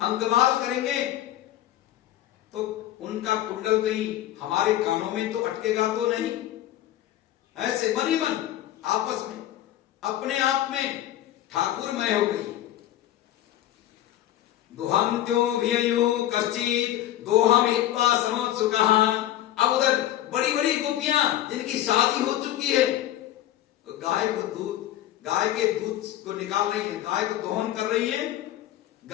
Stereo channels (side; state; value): right; quieter; 13.2 dB